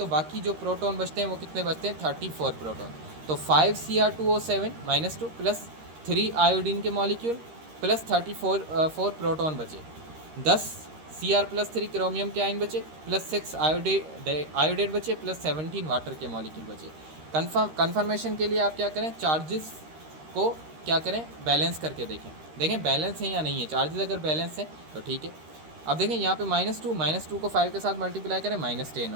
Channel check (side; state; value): left; late; 13 ms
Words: बाकी जो प्रोटॉन बचते हैं वो कितने बचते हैं, 34 प्रोटॉन। तो 5Cr2O7 -2 प्लस 3 आयोडीन के मॉलिक्यूल प्लस 4 प्रोटॉन बचे, 10 Cr+3 क्रोमियम के आयन बचे, प्लस 6 आयोडेट बचे, प्लस 17 वाटर के मॉलिक्यूल बचे। कन्फर्मेशन के लिए आप क्या करें, चार्जेस को क्या करें, बैलेंस करके देखें बैलेंस है या नहीं है। चार्जेस अगर बैलेंस है तो ठीक है। अब देखें यहाँ पे -2 को 5 के साथ मल्टीप्लाई करें, -10